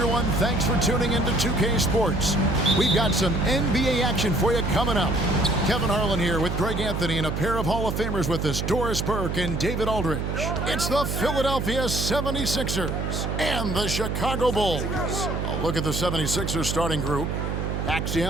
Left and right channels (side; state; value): right; noise; hum, 2 dB below the sound